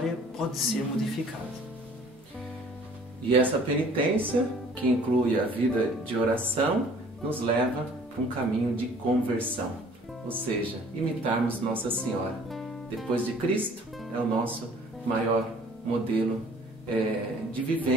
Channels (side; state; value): both; normal; correlation 0.53